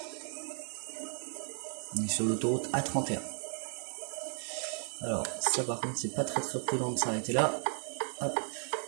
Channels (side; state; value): left; silent; 55 dB below the other